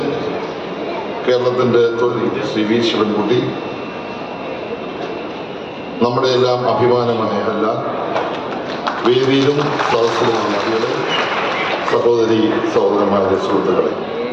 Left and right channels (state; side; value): identical; both; correlation 1.00